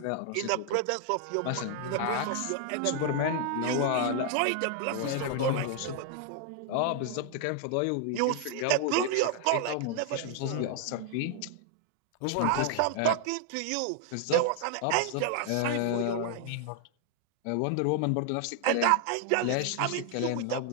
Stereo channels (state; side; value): different; both; correlation 0.00